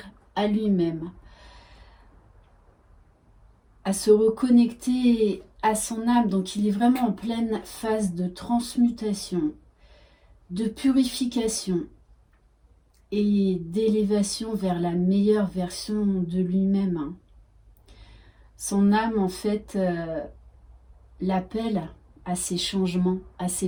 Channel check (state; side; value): identical; both; correlation 1.00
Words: à lui-même, à se reconnecter à son âme. Donc il est vraiment en pleine phase de transmutation, de purification et d'élévation vers la meilleure version de lui-même. Son âme, en fait, l'appelle à ces changements, à